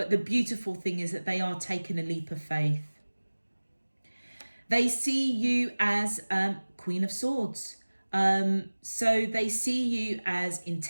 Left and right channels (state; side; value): inverted; both; correlation -1.00